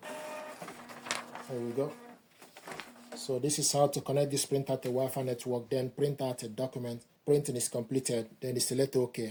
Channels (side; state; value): both; identical; correlation 1.00